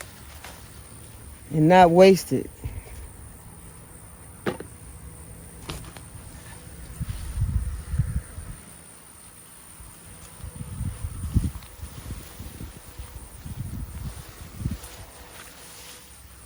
and not waste it.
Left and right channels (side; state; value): both; identical; correlation 1.00